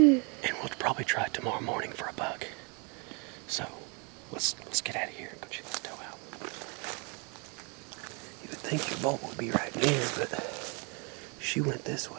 we'll probably try tomorrow morning for a buck. So let's get out of here and go check this doe out. You would think your bolt would be right near, but she went this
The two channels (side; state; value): left; quieter; 33.6 dB